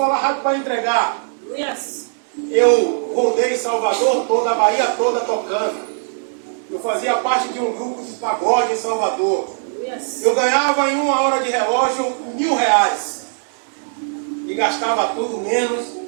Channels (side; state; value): left; silent; 64 dB below the other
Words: rápido para entregar. Aleluia. Eu rodei Salvador toda, a Bahia toda tocando. Eu fazia parte de um grupo de pagode em Salvador. Eu ganhava em 1 hora de relógio R$1.000. E gastava tudo menos